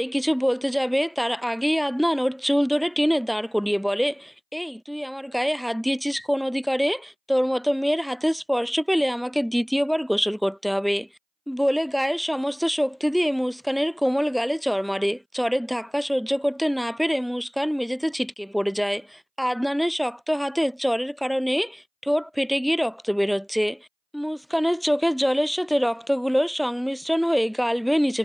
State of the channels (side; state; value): both; identical; correlation 1.00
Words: কিছু বলতে যাবে, তার আগেই আদনান ওর চুল ধরে টেনে দাঁড় করিয়ে বলে, এই তুই আমার গায়ে হাত দিয়েছিস কোন অধিকারে? তোর মতো মেয়ের হাতের স্পর্শ পেলে আমাকে দ্বিতীয়বার গোসল করতে হবে। বলে গায়ের সমস্ত শক্তি দিয়ে মুস্কানের কোমল গালে চড় মারে। চড়ের ধাক্কা সহ্য করতে না পেরে মুস্কান মেঝেতে ছিটকে পড়ে যায়। আদনানের শক্ত হাতে চড়ের কারণে ঠোঁট ফেটে গিয়ে রক্ত বের হচ্ছে। মুস্কানের চোখের জলের সাথে রক্তগুলোর সংমিশ্রণ হয়ে গাল বেয়ে নিচে